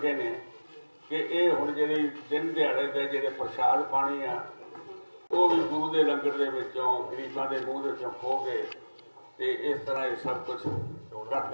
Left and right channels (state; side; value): inverted; both; correlation -1.00